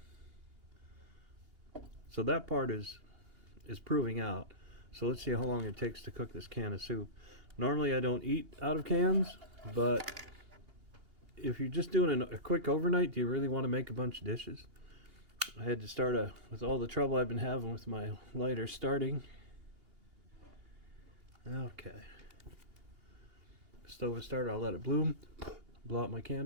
So that part is proving out. So let's see how long it takes to cook this can of soup. Normally I don't eat out of cans, but if you're just doing a quick overnight, do you really want to make a bunch of dishes? I had to start with all the trouble I've been having with my lighter starting. Okay. Stove is started, I'll let it bloom. Blow out my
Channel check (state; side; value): late; left; 2.8 ms